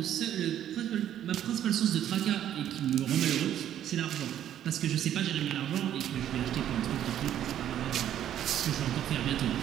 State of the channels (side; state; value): left; quieter; 10.9 dB